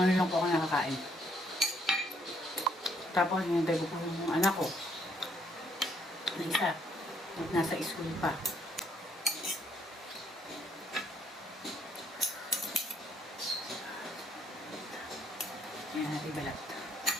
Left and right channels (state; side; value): normal; both; correlation 0.69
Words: ngayon lang po ako nakakain. Tapos, hinintay ko po yung anak ko. Na isa. Nasa school pa. Ayan natin balat.